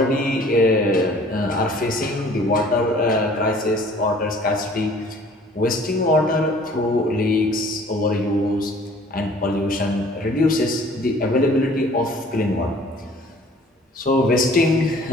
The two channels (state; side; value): normal; both; correlation 0.52